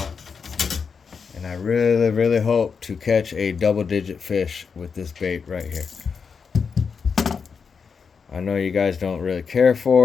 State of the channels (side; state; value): right; quieter; 5.8 dB